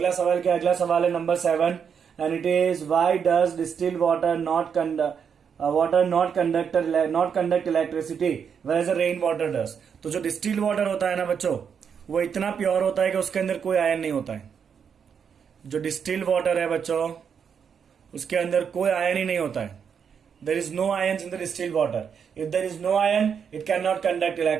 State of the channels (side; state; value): left; quieter; 7.1 dB